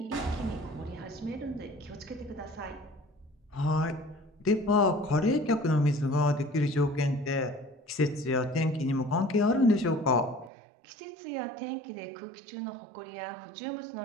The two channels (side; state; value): left; drops out; at 10.5 s